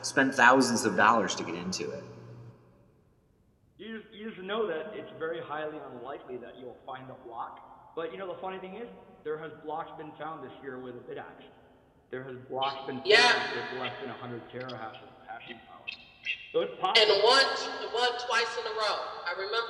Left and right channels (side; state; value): both; identical; correlation 1.00